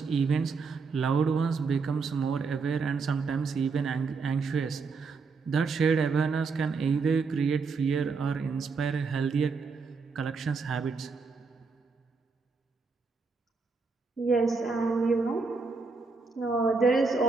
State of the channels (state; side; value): quieter; left; 4.7 dB